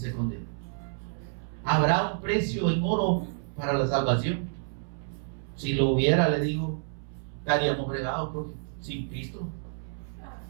condena? ¿Habrá un precio en oro para la salvación? Si lo hubiera, le digo, estaríamos fregados porque sin Cristo.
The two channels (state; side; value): silent; left; 59 dB below the other